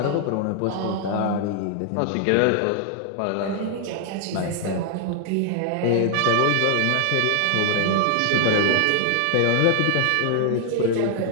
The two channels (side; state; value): both; different; correlation 0.00